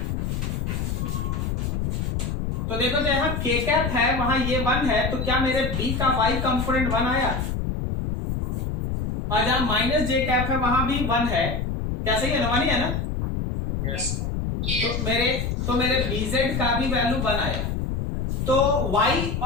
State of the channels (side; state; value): left; noise; rumble, 1 dB below the sound